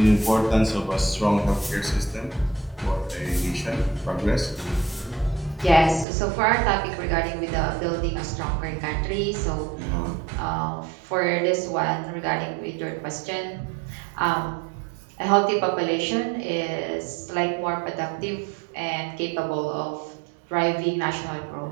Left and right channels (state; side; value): drops out; left; at 6.1 s